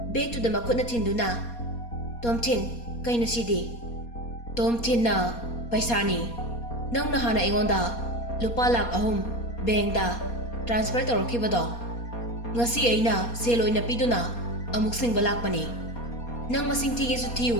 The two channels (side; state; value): right; late; 4.2 ms